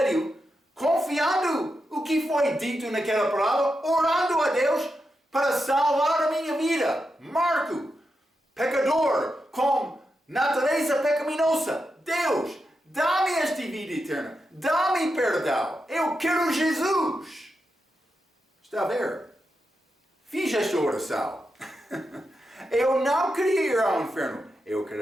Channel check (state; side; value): normal; both; correlation 0.87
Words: confiando o que foi dito naquela palavra, orando a Deus para salvar a minha vida. Marco, pecador, com natureza pecaminosa. Deus dá-me esta vida eterna, dá-me perdão, eu quero Jesus. Está a ver? Fiz esta oração. Eu não queria ir ao inferno, eu